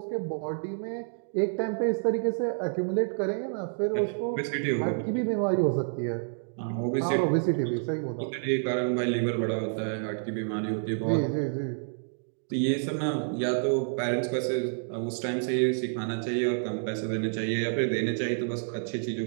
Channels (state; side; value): silent; left; digital silence